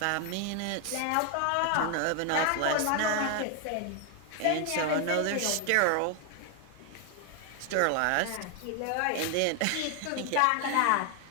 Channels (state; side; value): different; both; correlation 0.00